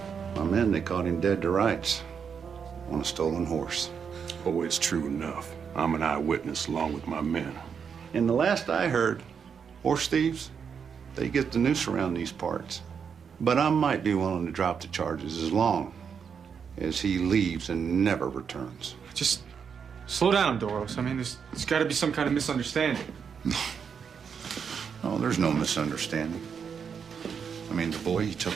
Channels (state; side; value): quieter; left; 6.8 dB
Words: My men, they caught him dead to rights on a stolen horse. Oh, it's true enough. I'm an eyewitness along with my men. And the last I heard, horse thieves, they get the noose around these parts. But I might be willing to drop the charges as long as he leaves and never returns. Just slow down, Doros. I mean, there's got to be some kind of misunderstanding. Oh, there's no misunderstanding. I mean, the boy, he